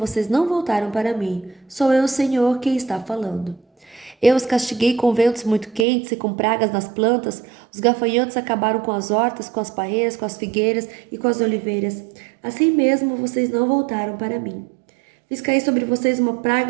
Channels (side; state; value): left; drops out; at 5.9 s